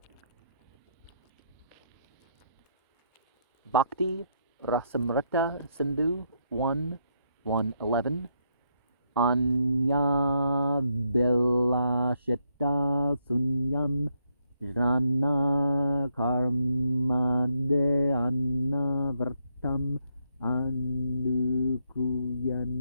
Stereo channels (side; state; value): both; inverted; correlation -0.77